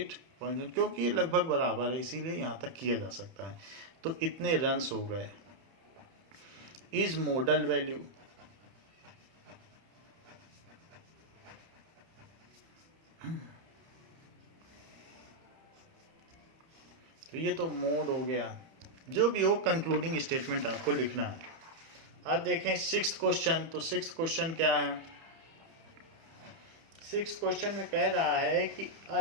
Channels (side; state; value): left; late; 30 ms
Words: क्योंकि ये लगभग बराबर है इसीलिए यहाँ तक किया जा सकता है। तो इतने रन्स हो गए। इज मॉडल वैल्यू, तो ये तो मोड हो गया। जो भी हो कंक्लूडिंग स्टेटमेंट आपको लिखना है। अब देखें 6th क्वेश्चन। तो 6th क्वेश्चन क्या है? 6th क्वेश्चन में कह रहा है कि